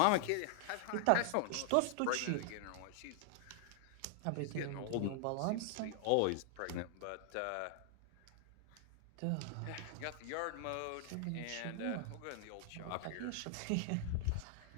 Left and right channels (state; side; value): different; both; correlation 0.00